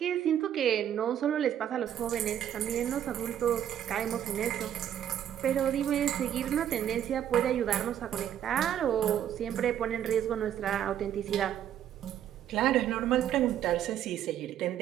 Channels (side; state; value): left; quieter; 10.3 dB